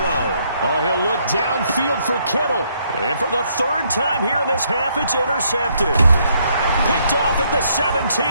Oh, he'll look downfield for Kittle. And for the 3rd time here in this half, it's intercepted. Picked off at the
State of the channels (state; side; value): inverted; both; correlation -0.71